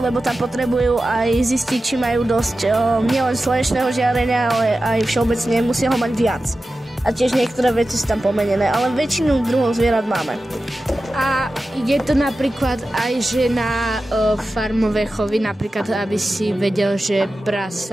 tam potrebujú aj zistiť, či majú dosť nielen slnečného žiarenia, ale aj všeobecne musia ho mať viac. A tiež niektoré veci sú tam pomenené, ale väčšinu druhov zvierat máme. A je to napríklad aj, že na farmové chovy, napríklad, aby si vedel, že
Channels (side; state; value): both; normal; correlation 0.94